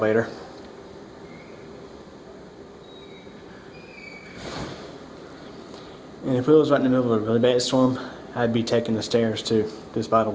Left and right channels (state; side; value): identical; both; correlation 1.00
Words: And if it was right in the middle of a really bad storm, I'd be taking the stairs too, just by the